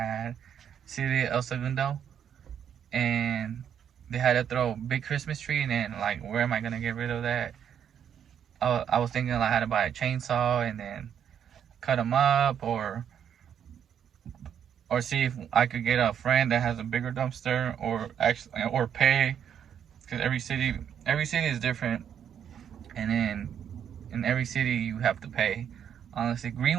City El Segundo, and they had to throw a big Christmas tree, and then like, where am I gonna get rid of that? I was thinking I had to buy a chainsaw and then cut them up, or see if I could get a friend that has a bigger dumpster, or pay because every city is different, and then in every city you have to pay. Honestly,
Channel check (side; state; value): left; quieter; 8.7 dB